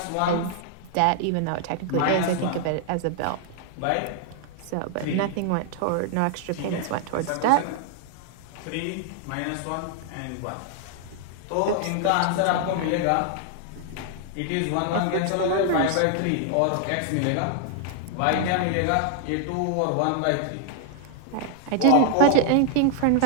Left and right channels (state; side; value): different; both; correlation 0.00